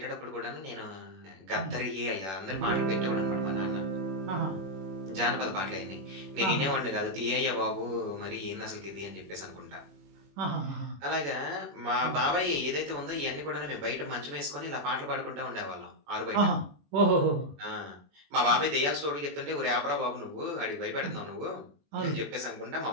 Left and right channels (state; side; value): late; left; 21 ms